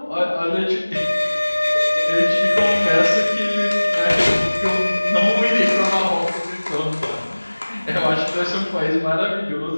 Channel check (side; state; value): both; inverted; correlation -1.00